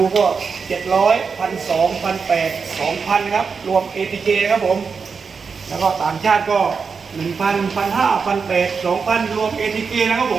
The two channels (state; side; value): quieter; left; 5.4 dB